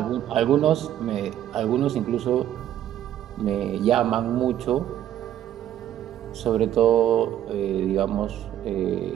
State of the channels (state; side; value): quieter; left; 11.5 dB